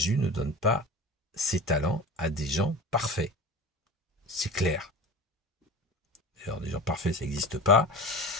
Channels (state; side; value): normal; both; correlation 0.33